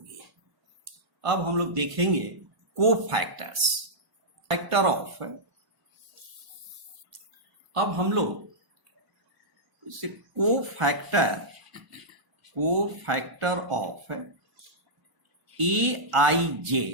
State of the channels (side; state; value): left; late; 1.5 ms